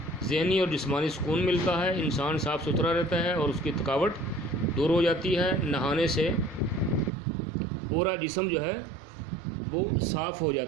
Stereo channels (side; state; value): left; drops out; at 7.1 s